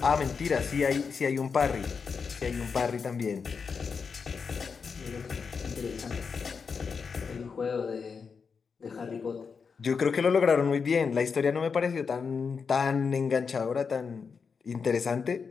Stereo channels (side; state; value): right; quieter; 5.6 dB